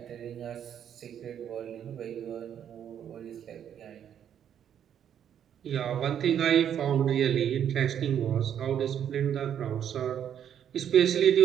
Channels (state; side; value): quieter; left; 9.3 dB